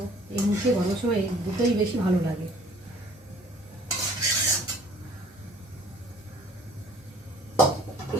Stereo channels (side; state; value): both; normal; correlation 0.54